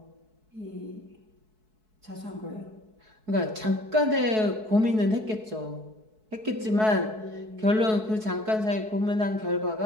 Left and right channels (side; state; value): left; late; 4.6 ms